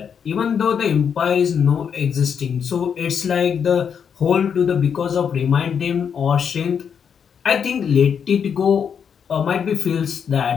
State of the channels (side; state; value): right; quieter; 7.3 dB